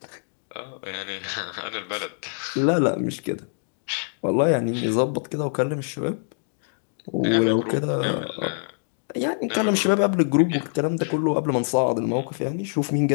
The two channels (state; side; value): silent; right; digital silence